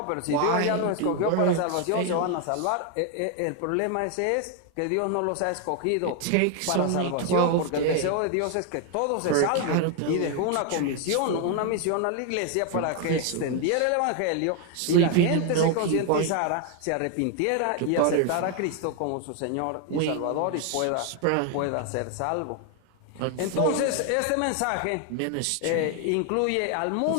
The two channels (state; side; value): different; both; correlation 0.00